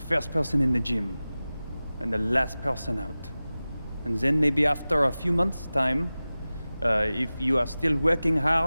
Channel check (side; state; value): both; inverted; correlation -0.97